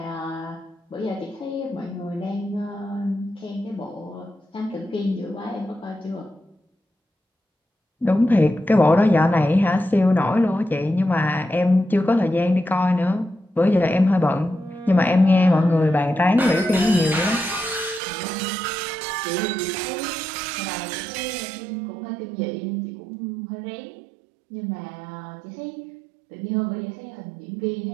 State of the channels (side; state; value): left; drops out; at 18.0 s